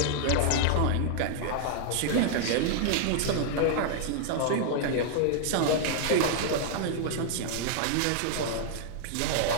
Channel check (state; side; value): different; both; correlation -0.01